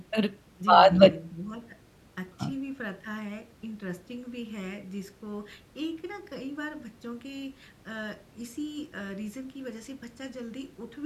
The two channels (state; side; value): identical; both; correlation 1.00